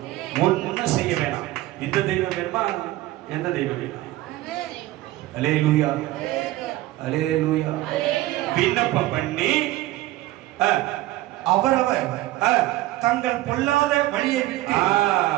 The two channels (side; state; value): left; quieter; 16.7 dB